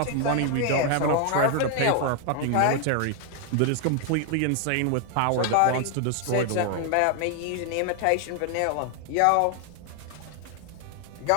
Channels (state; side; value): different; both; correlation 0.00